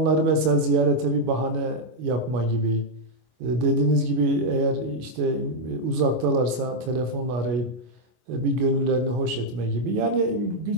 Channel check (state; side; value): late; left; 25 ms